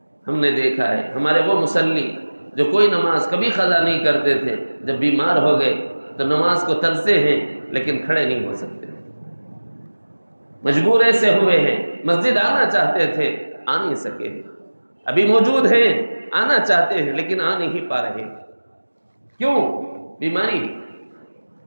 ہم نے دیکھا ہے ہمارے وہ مصلی جو کوئی نماز کبھی قضا نہیں کرتے تھے، جب بیمار ہو گئے تو نماز کو ترسے ہیں لیکن کھڑے نہیں ہو سکتے، مجبور ایسے ہوئے ہیں مسجد آنا چاہتے تھے آ نہیں سکے، ابھی موجود ہیں آنا چاہتے ہیں لیکن آ نہیں پا رہے۔ کیوں؟ بیماری،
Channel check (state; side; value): inverted; both; correlation -1.00